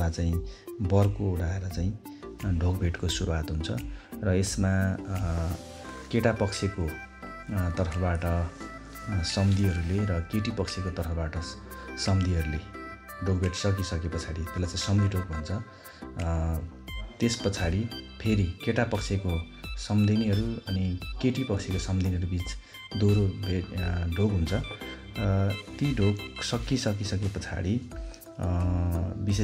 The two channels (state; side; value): identical; both; correlation 1.00